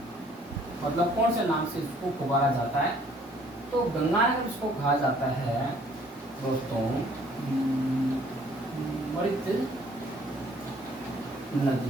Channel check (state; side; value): normal; both; correlation 0.59